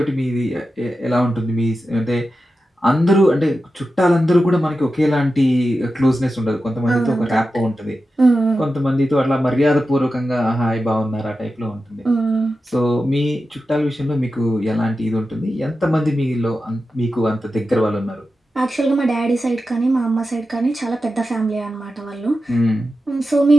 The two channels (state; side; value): normal; both; correlation 0.92